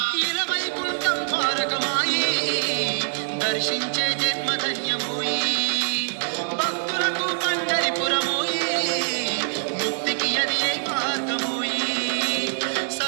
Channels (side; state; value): left; silent; digital silence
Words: ఇలవైకుంఠం ద్వారకమాయి దర్శించే జన్మధన్యమోయి భక్తులకు పండరిపురమోయి ముక్తికి అది ఏ మార్గమోయి